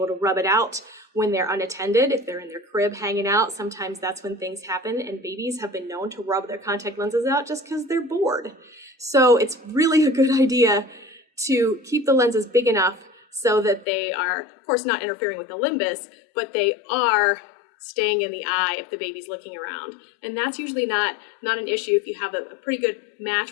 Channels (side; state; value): right; drops out; at 13.9 s